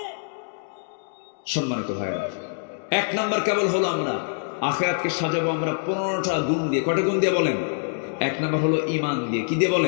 সম্মানিত ভাইরা, এক নাম্বার কেবল হলো আমরা আখিরাতকে সাজাবো আমরা 15টা গুণ দিয়ে। কয়টা গুণ দিয়ে বলেন? এক নাম্বার হলো ঈমান দিয়ে। কি দিয়ে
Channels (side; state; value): right; silent; digital silence